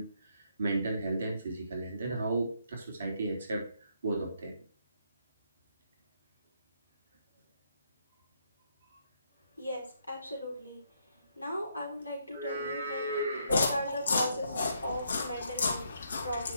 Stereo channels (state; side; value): inverted; both; correlation -0.74